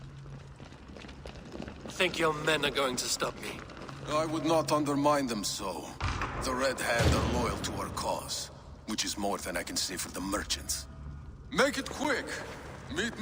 Think your men are going to stop me? I would not undermine them so. The Red Hand are loyal to our cause, which is more than I can say for the merchants. Make it quick! Meet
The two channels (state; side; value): identical; both; correlation 1.00